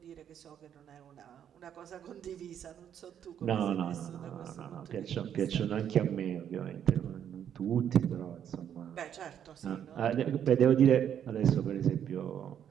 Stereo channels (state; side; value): quieter; left; 9.3 dB